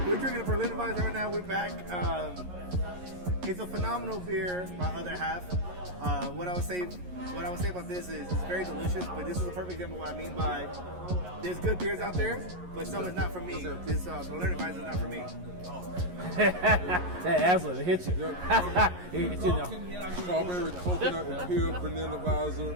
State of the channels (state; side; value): late; left; 11 ms